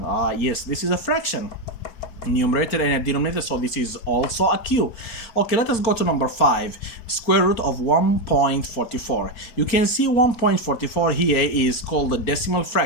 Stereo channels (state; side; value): late; right; 4.4 ms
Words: Yes, this is a fraction. Numerator and a denominator, so this is also a Q. Okay, let us go to number 5, square root of 1.44. You can see 1.44 here is called a decimal